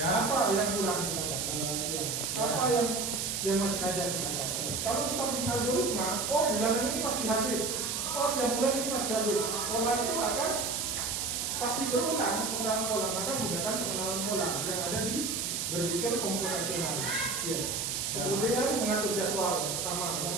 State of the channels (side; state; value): right; noise; hiss, 1 dB below the sound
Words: Apa yang kurang kita dapat? Ya. Apa yang masih ada kita dapat? Kalau kita punya algoritma, oh bulanan ini pasti habis. Oh tiap bulan ini pasti habis. Pola itu akan pasti berulang pola. Maka gunakan pengenalan pola yang ada di berpikir komputasional. Ya. Kemudian mengatur jadwal sama